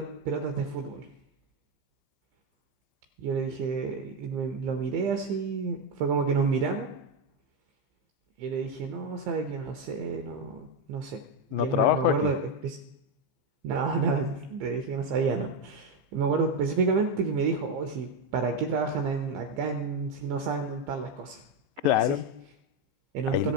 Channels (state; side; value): late; left; 15 ms